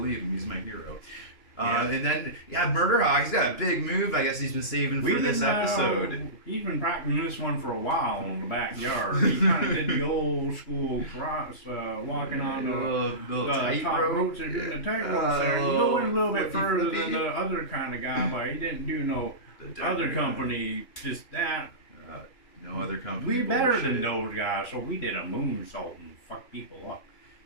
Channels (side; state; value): right; late; 3.0 ms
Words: him. He's my hero. And then, Murderhawk, he's got a big move. I guess he's been saving for this episode. He's been practicing this one for a while in the backyard. He kind of did the old school cross, walking on the top ropes and doing the tight ropes there. He went a little bit further than the other kind of guy, but he didn't do no other company, just that. No other company. We better than those guys, so we did a moonsault and fuck people up.